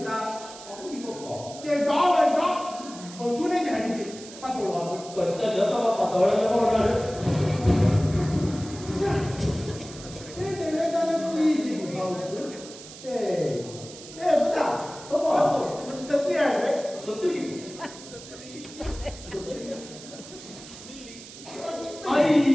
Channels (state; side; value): noise; right; hiss, 16 dB below the sound